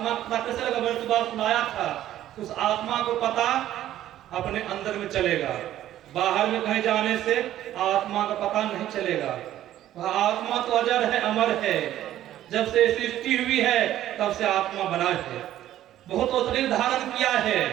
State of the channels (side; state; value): left; quieter; 12.8 dB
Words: पता कैसे लगा? मैंने सुबह सुनाया था, उस आत्मा को पता अपने अंदर में चलेगा। बाहर में कहीं जाने से आत्मा का पता नहीं चलेगा। वह आत्मा तो अजर है, अमर है। जब से सृष्टि हुई है तब से आत्मा बना है। बहुत शरीर धारण किया है।